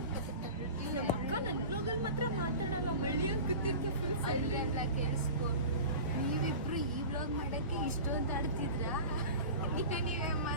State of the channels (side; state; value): both; inverted; correlation -0.34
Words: ನಮ್ಮ ಅಕ್ಕ ನನ್ನ ಬ್ಲಾಗಲ್ಲಿ ಮಾತ್ರ ಮಾತಾಡಲ್ಲ, ಮಳ್ಳಿ ಅಂತ ಕೂತಿರ್ತೀಯ ಫುಲ್ ಸೈಲೆಂಟ್. ಸೈಲೆಂಟ್ ಕೇಳಿಸ್ಕೊ. ನೀವಿಬ್ರು ಈ ಬ್ಲಾಗ್ ಮಾಡಕ್ಕೆ ಇಷ್ಟೊಂದು ಆಡ್ತಿದ್ರ? ನೀವೇ